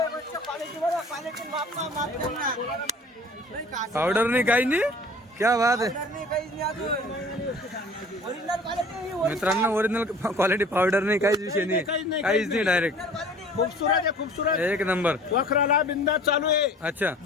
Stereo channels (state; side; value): normal; both; correlation 0.46